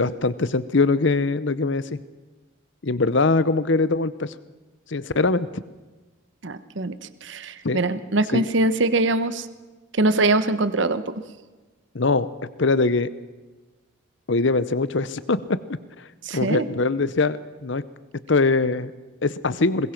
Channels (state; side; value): normal; both; correlation 0.06